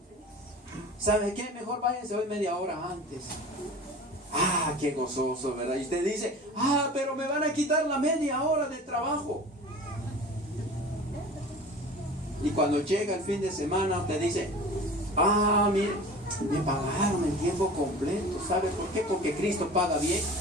¿sabe qué? Mejor váyanse hoy media hora antes. Ah, qué gozoso, ¿verdad? Y usted dice, ah, pero me van a quitar la media hora de trabajo. Y cuando llega el fin de semana, usted dice, ah, mire, Me pagaron en tiempo completo. ¿Sabe por qué? Porque Cristo paga bien.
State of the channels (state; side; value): normal; both; correlation 0.39